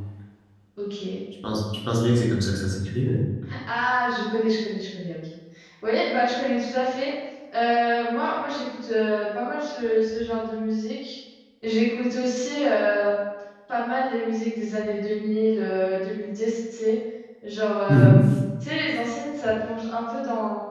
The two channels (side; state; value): both; identical; correlation 1.00